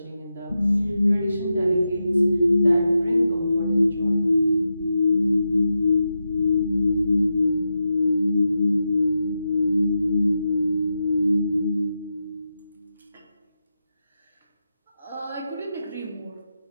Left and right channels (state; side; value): inverted; both; correlation -0.88